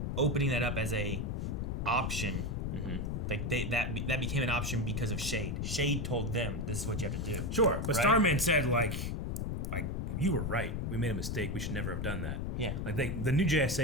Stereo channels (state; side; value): noise; left; rumble, 2 dB below the sound